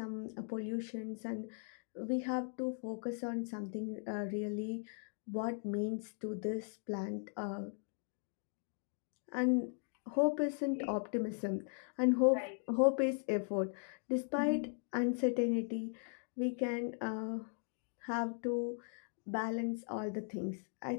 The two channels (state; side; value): silent; right; 52 dB below the other